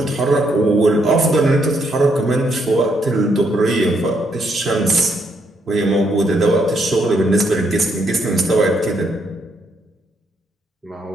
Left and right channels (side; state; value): both; normal; correlation 0.74